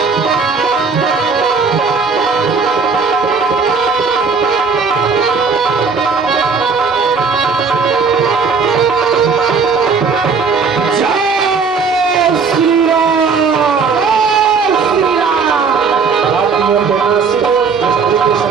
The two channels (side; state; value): left; quieter; 5.1 dB